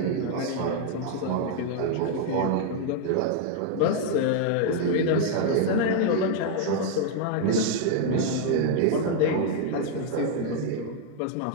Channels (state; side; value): different; both; correlation 0.00